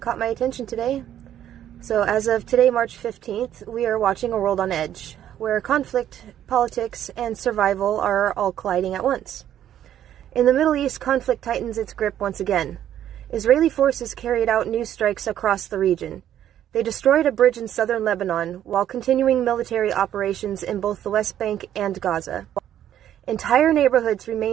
my attention today. So, as of today, March 15th, we are watching a world on edge, where conflict, politics, and survival are all colliding at once. In the Middle East, conflict tightens its grip once again. Israeli forces carried out new strikes across the region. They destroyed a bridge in southern Lebanon, while continuing military operations in both the West Bank and Gaza. Entire neighborhoods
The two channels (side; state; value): left; quieter; 11.0 dB